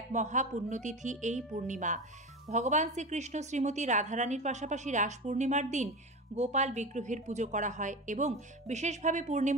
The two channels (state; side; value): normal; both; correlation 0.26